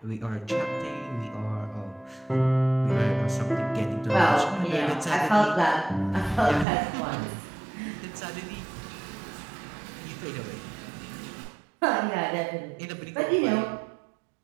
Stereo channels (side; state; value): left; drops out; at 6.7 s